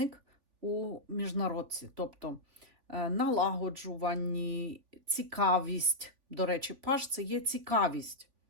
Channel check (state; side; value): late; left; 3.4 ms